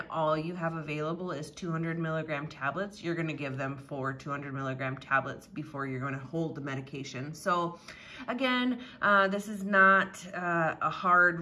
all you have available is 200 milligram tablets, you're going to give them 4 200 milligram tablets before you're going to hold the medication. So again, this is not a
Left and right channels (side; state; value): both; identical; correlation 1.00